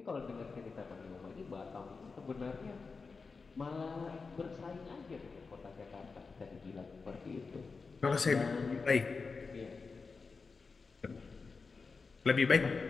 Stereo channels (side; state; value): right; quieter; 4.5 dB